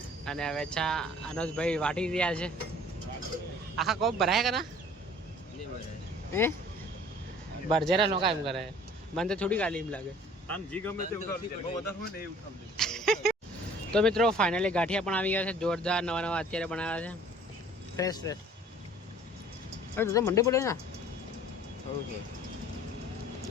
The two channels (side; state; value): both; normal; correlation 0.51